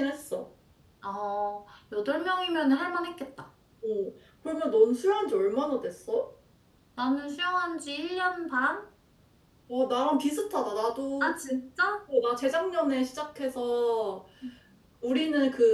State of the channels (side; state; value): both; identical; correlation 1.00